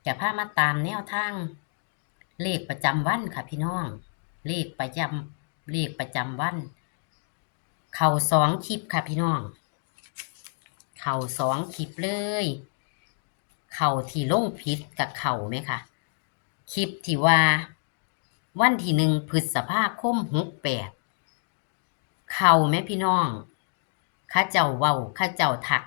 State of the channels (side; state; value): right; silent; digital silence